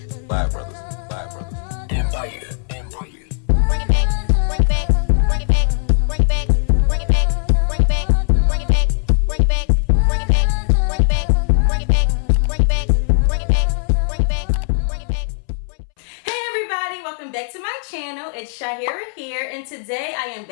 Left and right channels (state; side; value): silent; right; 67 dB below the other